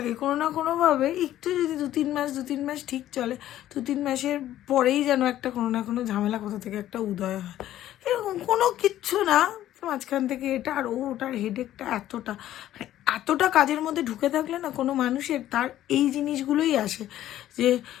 কোনো না কোনোভাবে। একটু যদি দু তিন মাস ঠিক চলে, 2-3 মাসের পরেই যেন একটা কোনো না কোনো ঝামেলা কোথা থেকে একটা উদয় হয়। এরকম কোনো কিচ্ছু না, মাঝখান থেকে এটা আর ওটার হেডেকটা এতটা কাজের মধ্যে ঢুকে থাকলে না কোনো মানুষের তার এই জিনিসগুলোই আসে, যে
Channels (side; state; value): right; quieter; 12.9 dB